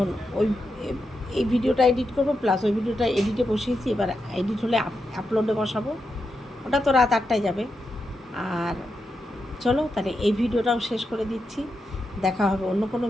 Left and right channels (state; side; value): normal; both; correlation 0.86